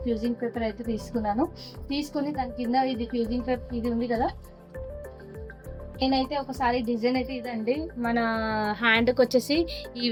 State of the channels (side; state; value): both; identical; correlation 1.00